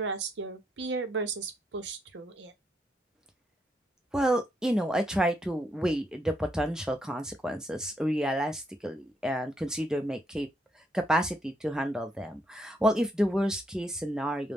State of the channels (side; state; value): both; normal; correlation 0.76